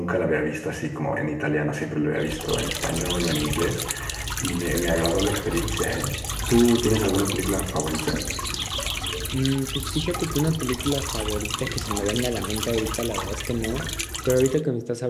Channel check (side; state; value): both; identical; correlation 1.00